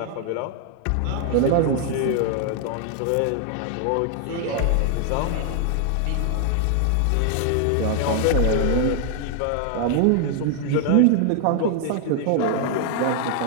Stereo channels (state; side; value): different; both; correlation 0.00